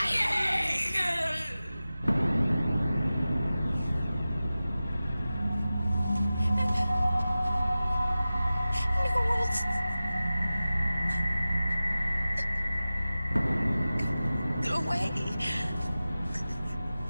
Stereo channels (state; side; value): inverted; both; correlation -0.96